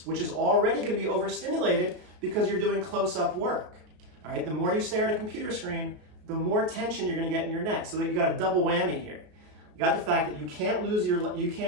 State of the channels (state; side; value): late; left; 33 ms